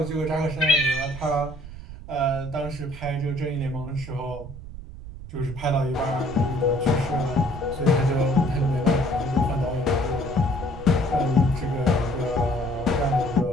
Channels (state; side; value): noise; right; rumble, 12 dB below the sound